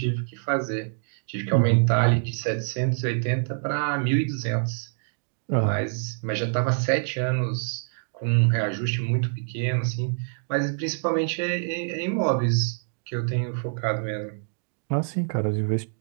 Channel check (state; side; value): silent; left; digital silence